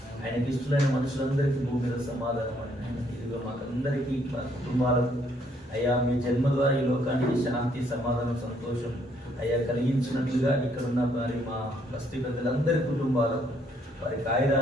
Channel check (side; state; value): both; normal; correlation 0.68